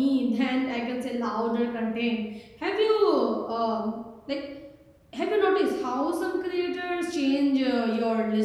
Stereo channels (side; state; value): both; identical; correlation 1.00